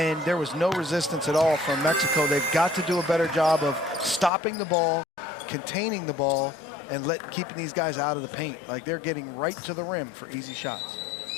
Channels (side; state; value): right; drops out; at 4.3 s